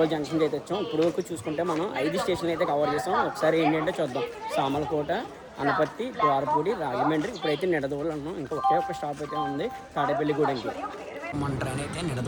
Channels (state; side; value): identical; both; correlation 1.00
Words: జంక్షన్కి అయితే వచ్చాం. ఇప్పుడు వరకు చూసుకుంటే మనం 5 స్టేషన్లు అయితే కవర్ చేసాం. ఒకసారి ఏంటంటే చూద్దాం. సామలకోట, అనపర్తి, ద్వారపూడి, రాజమండ్రి. ఇప్పుడైతే నిడదవోలు అన్నాం. ఇంకా ఒకే ఒక స్టాప్ అయితే ఉంది తాడేపల్లిగూడెంకి. మన ట్రైన్ అయితే